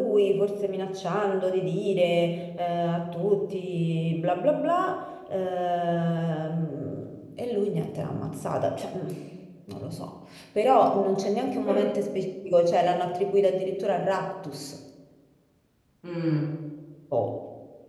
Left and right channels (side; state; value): both; identical; correlation 1.00